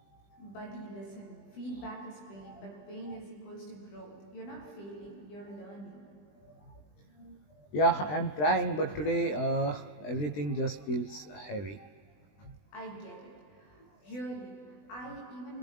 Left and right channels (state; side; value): late; right; 20 ms